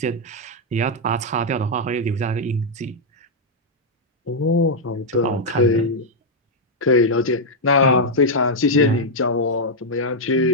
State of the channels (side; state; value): both; normal; correlation -0.03